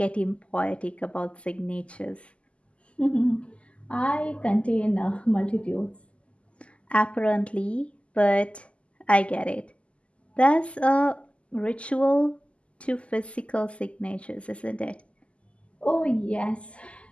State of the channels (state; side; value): late; right; 0.057 ms